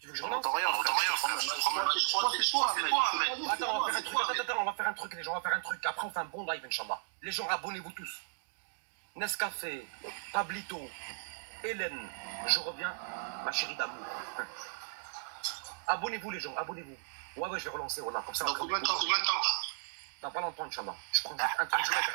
On n'entend rien, frère. Je crois que c'est toi, Ahmed. Attends, on va faire un truc, les gens, Après, on fait un bon live, Inch'Allah. Les gens, abonnez-vous tous. Nescafé, Pablito, Hélène, je reviens, ma chérie d'amour. Abonnez-vous, les gens, abonnez-vous. Ouais, je vais relancer, voilà, comme ça. Dans combien de temps? Dans pas longtemps, Inch'Allah. Je prends un truc, je vais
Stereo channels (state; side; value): silent; left; digital silence